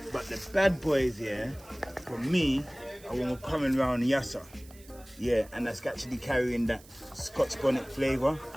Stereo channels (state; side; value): noise; right; hiss, 23 dB below the sound